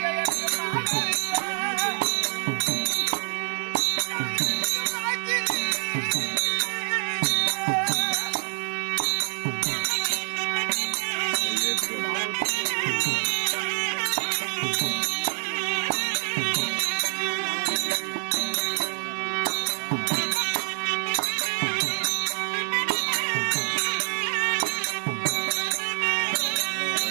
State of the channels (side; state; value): left; silent; digital silence